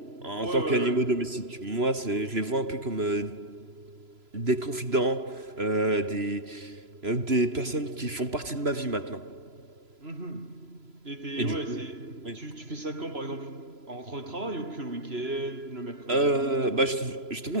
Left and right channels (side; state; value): left; late; 3.0 ms